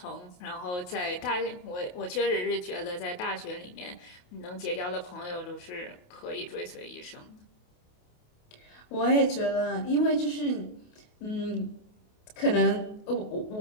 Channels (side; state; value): right; late; 28 ms